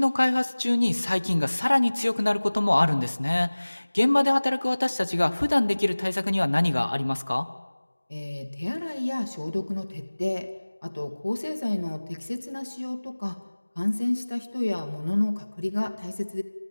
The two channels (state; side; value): inverted; both; correlation -1.00